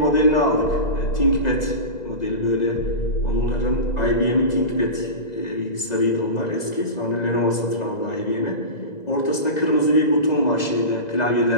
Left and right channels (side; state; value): right; late; 2.0 ms